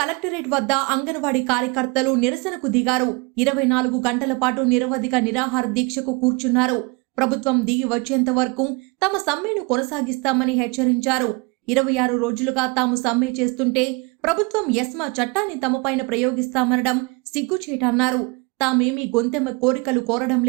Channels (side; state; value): left; quieter; 28.7 dB